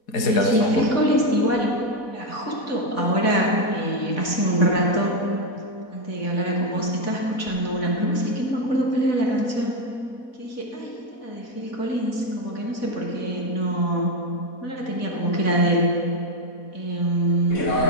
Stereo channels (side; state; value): right; late; 4.1 ms